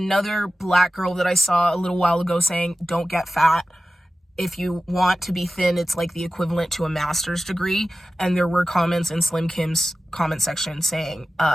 black girl that I saw a little while ago saying, don't get fat. If you want to be thin, it's like the equivalent to a master's degree. And there were comments in Slim Kim's comment section saying,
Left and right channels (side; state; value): both; normal; correlation 0.95